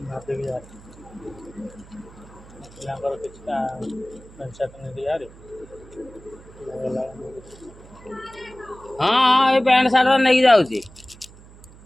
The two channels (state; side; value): noise; right; hum, 21 dB below the sound